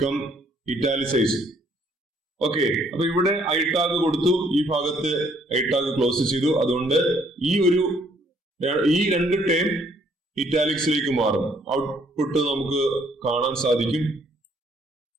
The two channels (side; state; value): both; normal; correlation 0.65